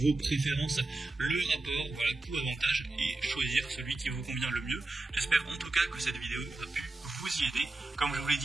préférences, le rapport, voilà, coût-avantage et choisir celui qui vous convient le mieux. J'espère en tout cas que cette vidéo a pu vous y aider. Comme je vous l'ai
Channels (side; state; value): left; quieter; 3.0 dB